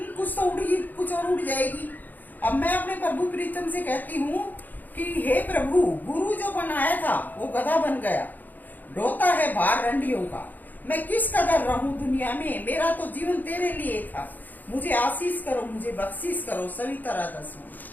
कुछ तो उड़ेगी, कुछ और उड़ जाएगी। अब मैं अपने प्रभु प्रीतम से कहती हूँ कि हे प्रभु, गुरु जो बनाया था वो गधा बन गया, ढोता है भार रंडियों का। मैं किस कदर रहूं दुनिया में? मेरा तो जीवन तेरे लिए था। मुझे आशीष करो, मुझे बख्शीश करो। सविता राधा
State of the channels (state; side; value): late; right; 0.085 ms